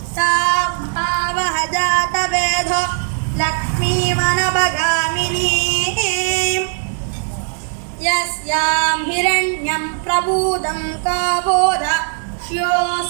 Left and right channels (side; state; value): left; silent; digital silence